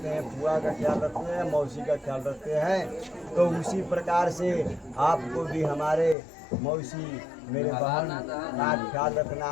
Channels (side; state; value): right; drops out; at 6.2 s